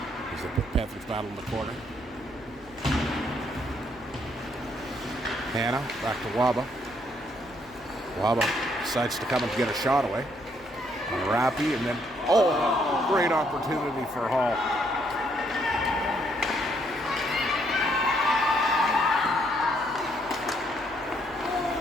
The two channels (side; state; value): left; noise; hum, 25 dB below the sound